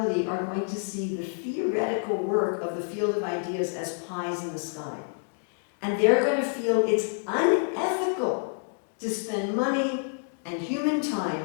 are going to see the theoretical work of the field of ideas as pies in the sky. And they're going to feel it's unethical to spend money and human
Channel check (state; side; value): silent; right; digital silence